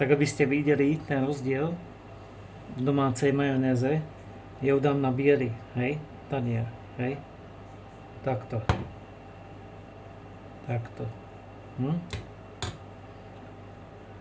aby ste videli ten rozdiel v domácej majonéze, ja ju dám na biely, hej, tanier, hej. Takto. Takto.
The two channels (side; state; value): both; identical; correlation 1.00